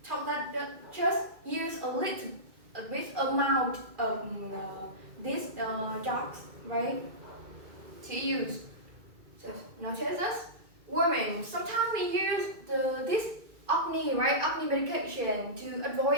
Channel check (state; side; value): late; left; 2.3 ms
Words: tell that just use a bit amount of these drugs, right? To use. So notice this. Women, sometimes we use this acne, right? Acne medication to